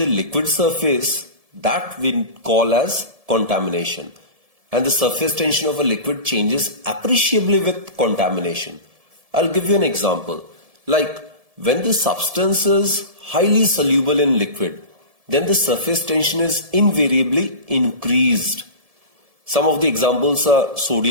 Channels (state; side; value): late; left; 1.7 ms